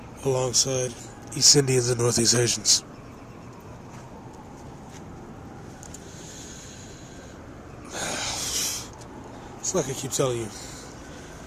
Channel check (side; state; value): both; identical; correlation 1.00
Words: alongside East Indians and Northeast Asians. It's like I keep telling you,